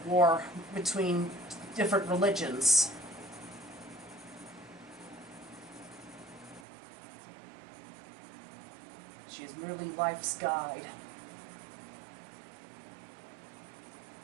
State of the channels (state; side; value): drops out; left; at 6.7 s